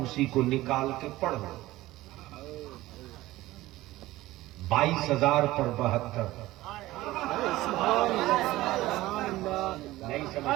को निकाल के पढ़ लो। 22,000 पर 72 नहीं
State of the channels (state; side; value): quieter; left; 17.2 dB